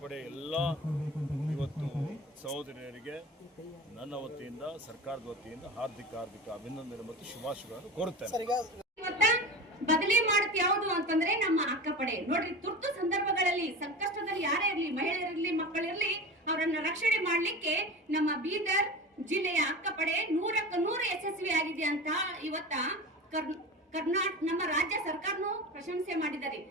ಎಲ್ಲ ಇವತ್ತು ಸಹೋದರಿಯರಿಗೆ ನನ್ನ ವತಿಯಿಂದ, ಸರ್ಕಾರದ ವತಿಯಿಂದ ಹಾರ್ದಿಕ ಅಭಿನಂದನೆ ಮತ್ತು ಶುಭಾಶಯಗಳನ್ನು ಕೋರುತ್ತೇನೆ. ಬದಲಿ ಮಾಡುತ್ತೆ ಯಾವುದು ಅಂತಂದ್ರೆ ನಮ್ಮ ಅಕ್ಕಪಡೆ. ನೋಡ್ರಿ, ತುರ್ತು ಸಂದರ್ಭಗಳಲ್ಲಿ ಸಂಕಷ್ಟದಲ್ಲಿ ಯಾರೇ ಇರಲಿ, ಮಹಿಳೆಯರಿರ್ಲಿ, ಮಕ್ಕಳಿರ್ಲಿ, ಅವರನ್ನ ರಕ್ಷಣೆ ಮಾಡ್ಲಿಕ್ಕೆ ನಮ್ಮ ಬೀದರ್ ಜಿಲ್ಲೆಯ ಅಕ್ಕಪಡೆ 100ಕ್ಕೆ 100 ಯಶಸ್ವಿ ಆಗಿದೆ ಅಂತ ಇವತ್ತ ನಮ್ಮ ರಾಜ್ಯ ಸರ್ಕಾರನು ಪ್ರಶಂಸೆ ಮಾಡಿದ್ದಾರೆ.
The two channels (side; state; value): both; normal; correlation 0.31